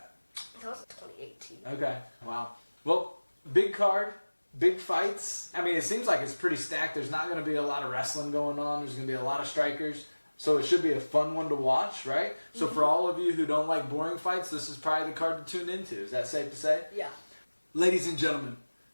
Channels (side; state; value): both; inverted; correlation -1.00